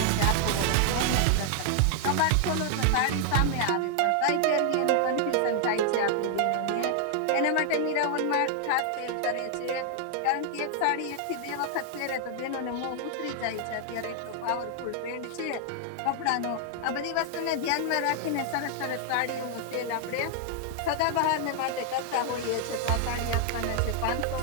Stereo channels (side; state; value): both; different; correlation 0.00